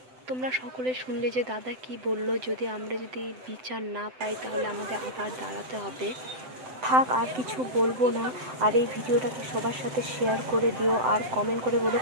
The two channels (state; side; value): late; left; 7.8 ms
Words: তোমরা সকলে শুনলে যে দাদা কি বললো, আমরা যদি বিচার না পাই তাহলে আমাদের আবার দাঁড়াতে হবে। থাক, আর কিছু বলবো না। আর এই ভিডিওটাকে সবার সাথে শেয়ার করে দিও, আর কমেন্ট করে বলো